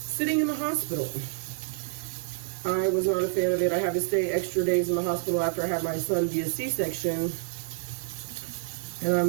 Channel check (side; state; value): left; silent; 59 dB below the other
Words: in the hospital. I was not a fan of it. I had to stay extra days in the hospital after I had my son via C-section, and